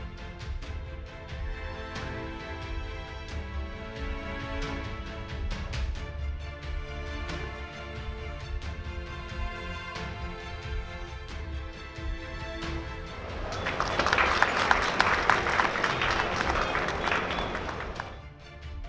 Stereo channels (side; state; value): both; identical; correlation 1.00